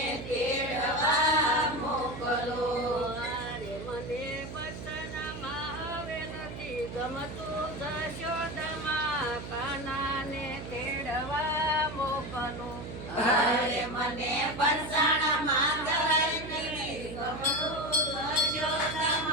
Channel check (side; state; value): right; noise; hum, 9 dB below the sound